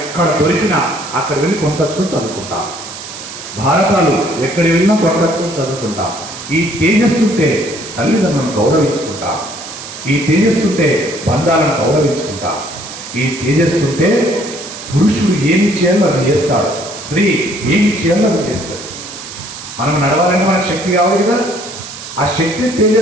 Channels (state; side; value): noise; right; hiss, 12 dB below the sound